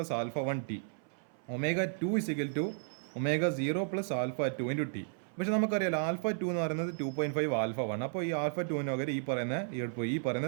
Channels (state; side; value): silent; left; 55 dB below the other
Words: alpha 1 T, omega 2 equal to omega 0 plus alpha 2 into T. പക്ഷേ നമുക്കറിയാലോ ആൽഫ 2 എന്ന് പറയുന്നത് 2.5 ആൽഫ 1. അപ്പോൾ ഈ ആൽഫ 2 പകരം ഈ പറയുന്ന